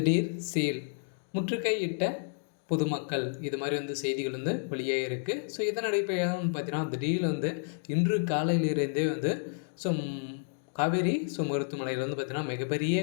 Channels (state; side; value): silent; right; digital silence